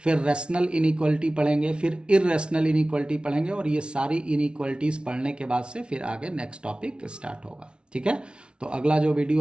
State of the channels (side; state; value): left; late; 0.057 ms